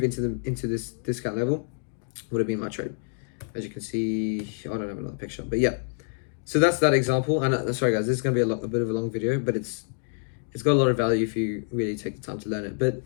into this discount level would have been my trade. As you can see, I don't have another picture, but yeah. So that's that example. And sorry guys, this is gonna be a bit of a long video, but it's got a lot of value if you really take the time to learn it. But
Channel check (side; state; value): right; silent; digital silence